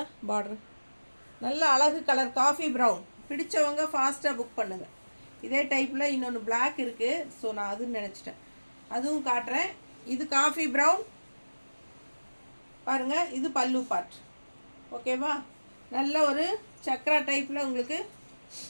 பார்டர் நல்ல அழகு கலர் காஃபி ப்ரௌன். பிடிச்சவங்க ஃபாஸ்ட்டாக புக் பண்ணுங்கள். இதே டைப்பில் இன்னொன்று பிளாக் இருக்குது, ஸோ நான் அதுன்னு நினச்சிட்டேன், அதுவும் காட்டுறேன். இது காஃபி ப்ரௌன் பாருங்கள். இது பல்லு பார்ட். ஓகேவா, நல்ல ஒரு சக்ரா டைப்பில் உங்களுக்கு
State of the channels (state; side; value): inverted; both; correlation -1.00